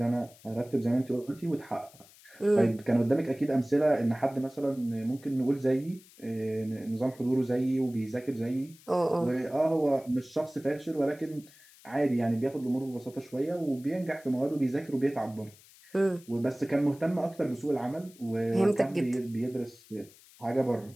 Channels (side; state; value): left; noise; hiss, 24 dB below the sound